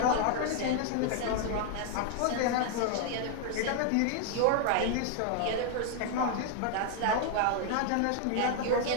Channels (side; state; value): both; different; correlation 0.00